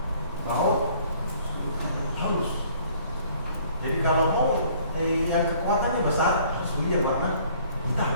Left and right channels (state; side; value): inverted; both; correlation -0.57